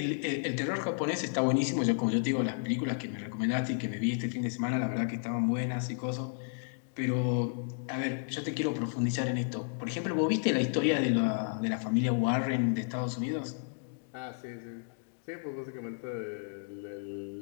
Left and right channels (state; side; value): silent; right; digital silence